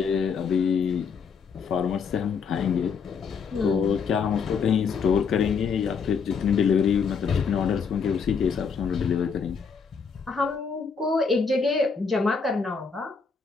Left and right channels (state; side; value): quieter; right; 5.8 dB